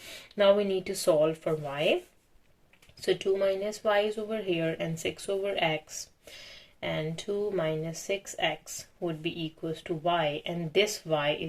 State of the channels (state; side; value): identical; both; correlation 1.00